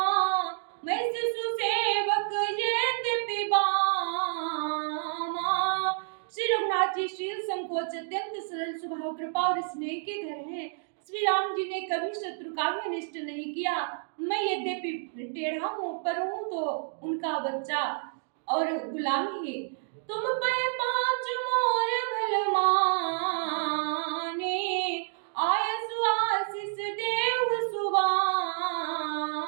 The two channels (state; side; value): silent; left; digital silence